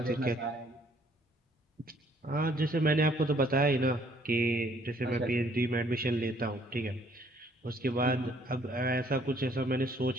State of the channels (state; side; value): normal; both; correlation 0.63